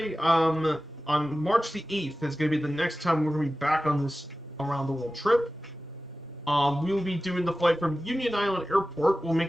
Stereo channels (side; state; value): both; normal; correlation 0.95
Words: on March the 8th is going to be the next time we're going to be back on this around the world trip. We will be doing the flight from Union Island Airport. We'll